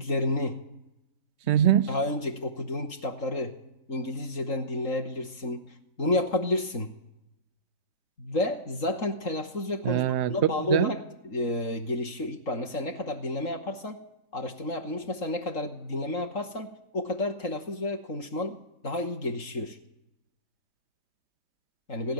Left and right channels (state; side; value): late; right; 3.8 ms